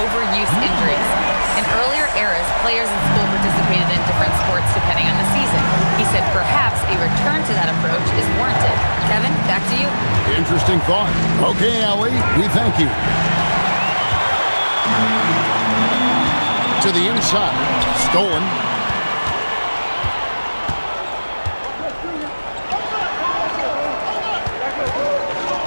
overuse injuries. In earlier eras, players in school participated in different sports depending on the season. He said perhaps a return to that approach is warranted. Kevin, back to you. Interesting thought. Okay, Allie, we thank you. To the inside. Stolen.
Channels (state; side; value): inverted; both; correlation -1.00